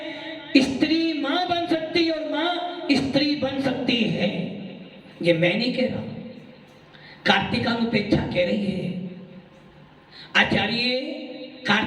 स्त्री मां बन सकती है और मां स्त्री बन सकती है। ये मैं नहीं कह रहा, कार्तिकानुपेक्षा कह रही है। आचार्य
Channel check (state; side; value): identical; both; correlation 1.00